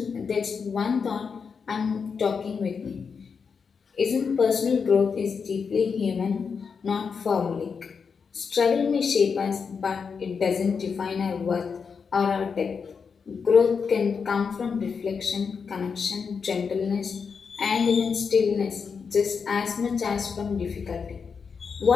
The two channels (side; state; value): right; quieter; 5.8 dB